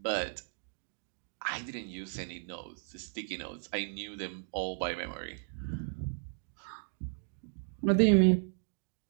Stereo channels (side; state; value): left; silent; digital silence